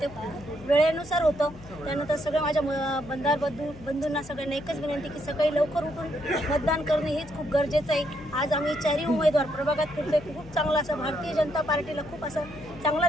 ते वेळेनुसार होतं. त्यानंतर सगळ्या माझ्या मतदार बंधूंना सगळ्यांना एकच विनंती की सकाळी लवकर उठून मतदान करणं हेच खूप गरजेचं आहे. आज आम्ही 4ही उमेदवार प्रभागात फिरतोय. खूप चांगला असं भारतीय जनता पार्टीला खूप असं चांगला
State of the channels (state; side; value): noise; left; hum, 18 dB below the sound